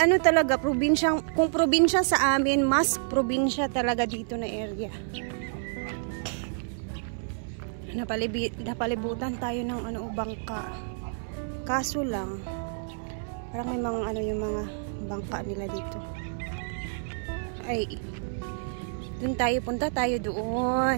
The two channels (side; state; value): left; silent; digital silence